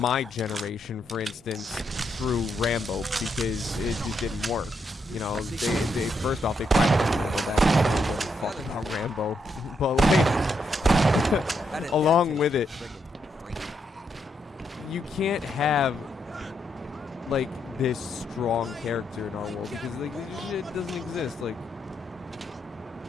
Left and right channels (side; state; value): both; normal; correlation 0.79